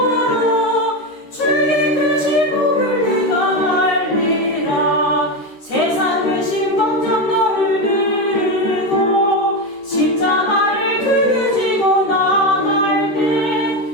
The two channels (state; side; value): late; right; 13 ms